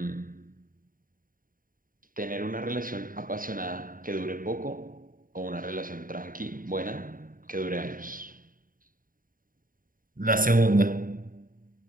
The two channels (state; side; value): late; left; 0.40 ms